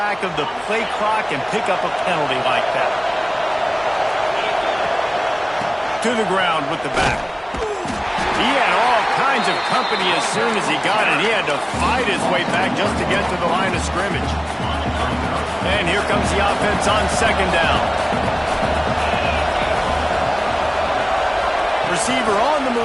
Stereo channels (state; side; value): identical; both; correlation 1.00